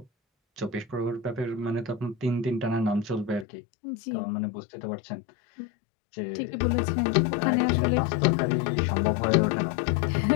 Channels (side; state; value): right; drops out; at 3.5 s